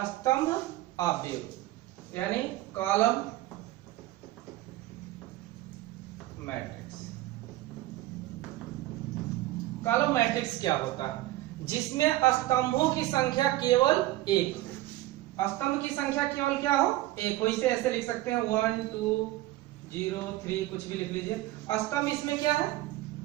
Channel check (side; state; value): left; quieter; 16.6 dB